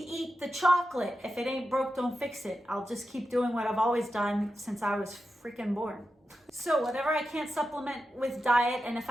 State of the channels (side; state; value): both; normal; correlation 0.90